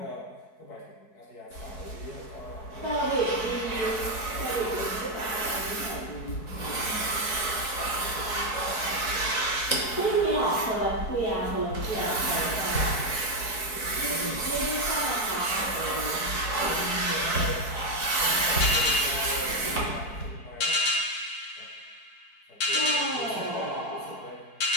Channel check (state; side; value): late; right; 4.6 ms